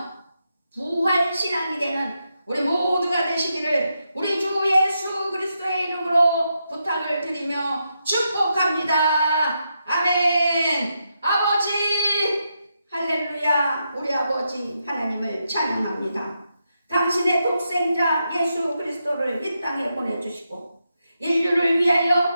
부활신앙이 되는 우리 모두가 되시기를 우리 주 예수 그리스도의 이름으로 부탁을 드리며 축복합니다. 아멘. 아버지 할렐루야. 우리 아버지 하나님을 찬양합니다. 당신의 독생자 예수 그리스도를 이 땅에 보내주시고 인류를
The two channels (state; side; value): inverted; both; correlation -0.84